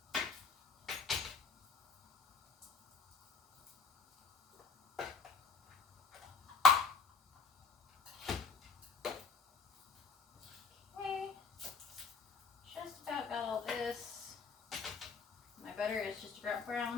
Butter is just about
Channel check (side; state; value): right; quieter; 4.6 dB